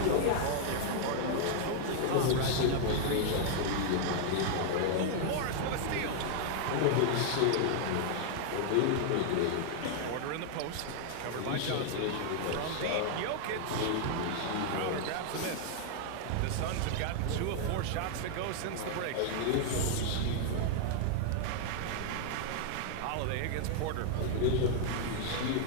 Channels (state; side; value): different; both; correlation 0.00